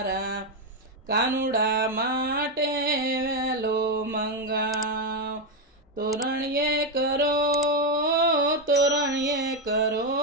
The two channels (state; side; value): normal; both; correlation 0.06